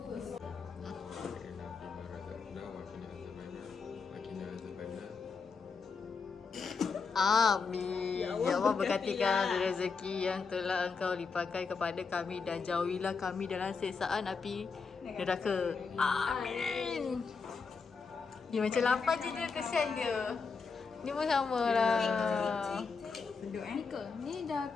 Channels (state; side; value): quieter; right; 5.0 dB